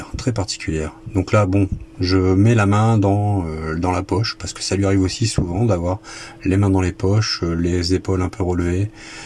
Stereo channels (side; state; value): both; identical; correlation 1.00